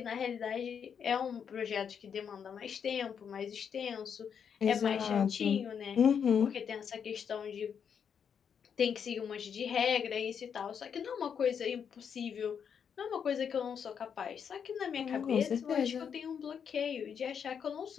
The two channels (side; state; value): right; quieter; 7.4 dB